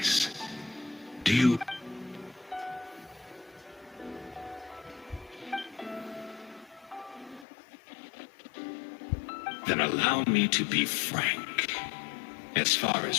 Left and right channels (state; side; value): drops out; right; at 7.5 s